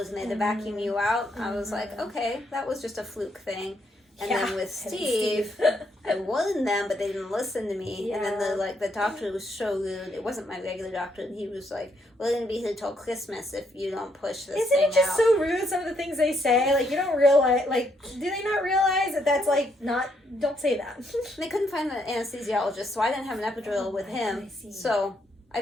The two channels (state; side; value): normal; both; correlation 0.74